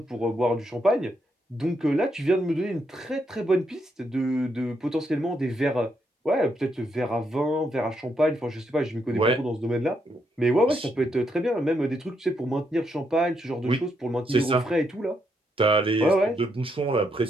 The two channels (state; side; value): normal; both; correlation 0.78